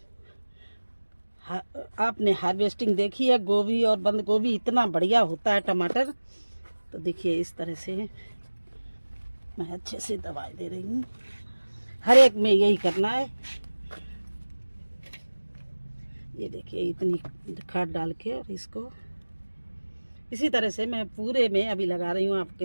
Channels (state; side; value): inverted; both; correlation -1.00